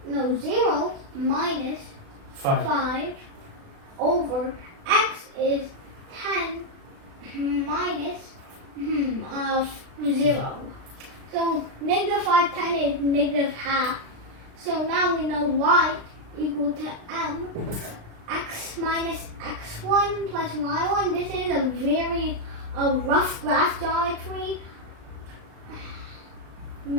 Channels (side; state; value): left; late; 36 ms